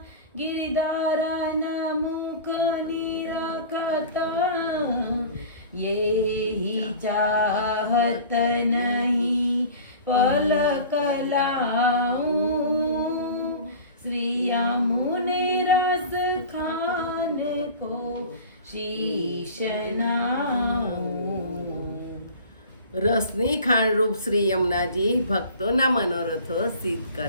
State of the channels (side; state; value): both; inverted; correlation -0.39